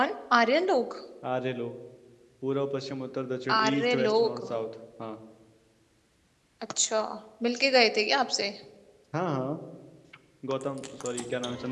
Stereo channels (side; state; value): both; identical; correlation 1.00